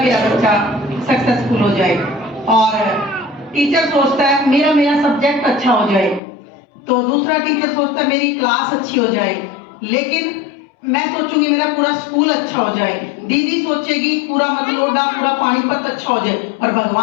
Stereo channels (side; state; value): right; drops out; at 6.2 s